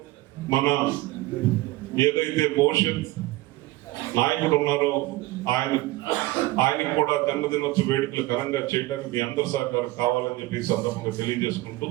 మన ఏదైతే భవిష్యత్ నాయకుడు ఉన్నారో ఆయనకు కూడా జన్మదినోత్సవ వేడుకలు ఘనంగా చేయడానికి మీ అందరి సహకారం కావాలని చెప్పి ఈ సందర్భంగా తెలియజేసుకుంటూ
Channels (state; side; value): quieter; left; 19.0 dB